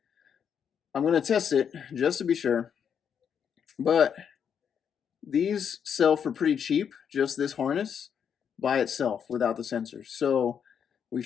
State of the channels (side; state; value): right; quieter; 7.7 dB